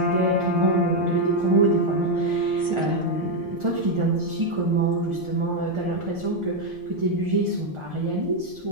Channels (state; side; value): normal; both; correlation 0.03